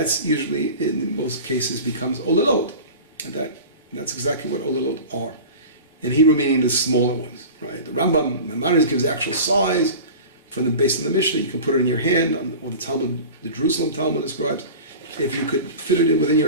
usually, in most cases, becomes olalot. And that's exactly what olalot are. In Hebrew, meaning the smaller ones, right? The Rambam, Maimonides gives the actual size based on the Mishnah. You can put it in your hand, or the Talmud, the Jerusalem Talmud describes. If you could fit it in within your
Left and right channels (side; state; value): both; inverted; correlation -0.36